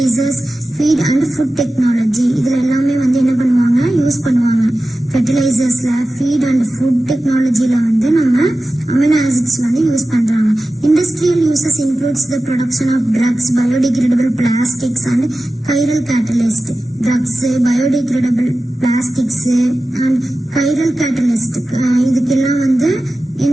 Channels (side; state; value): both; normal; correlation 0.95